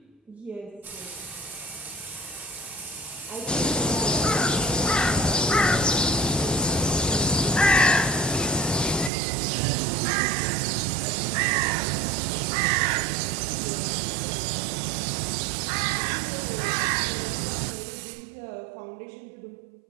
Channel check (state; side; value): drops out; left; at 9.1 s